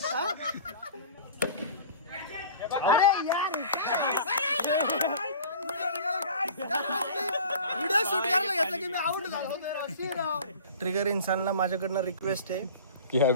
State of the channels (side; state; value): both; inverted; correlation -0.41